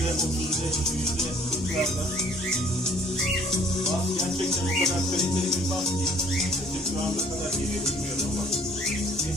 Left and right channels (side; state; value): both; normal; correlation 0.58